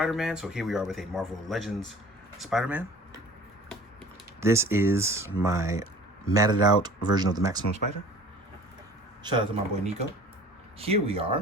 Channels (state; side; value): normal; both; correlation 0.46